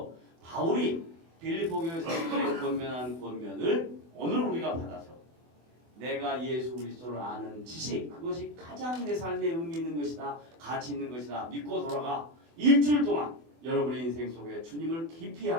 바울이 빌립보 교회 성도들의 권면한 권면을 오늘 우리가 받아서 내가 예수 그리스도를 아는 지식, 그것이 가장 내 삶에 의미 있는 것이다, 가치 있는 것이다 믿고 돌아가 일주일 동안 여러분의 인생 속에 주님을 깊이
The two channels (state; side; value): late; left; 24 ms